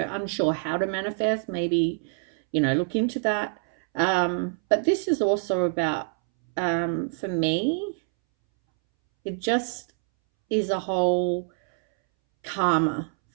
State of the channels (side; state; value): left; silent; 61 dB below the other